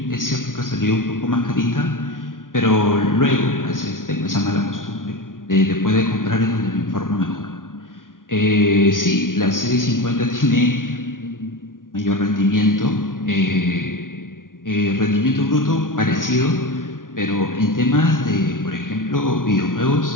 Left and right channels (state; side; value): late; right; 0.89 ms